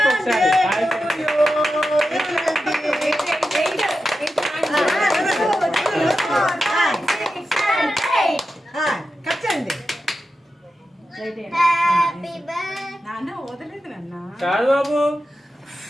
ఒకసారి. కాదు బాబు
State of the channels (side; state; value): both; normal; correlation 0.90